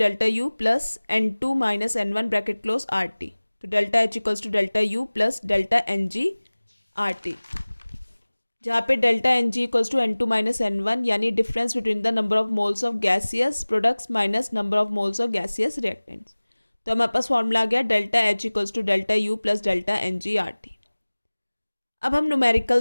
U plus N2 minus N1 bracket close RT, तो delta H equals to delta U plus delta NG RT, जहाँ पे delta n g equals to N2 minus N1 यानी difference between the number of moles of gaseous products minus number of moles of gaseous reactants. तो हमारे पास formula आ गया delta H equals to delta U plus delta n g R T. अब हम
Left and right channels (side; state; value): both; inverted; correlation -1.00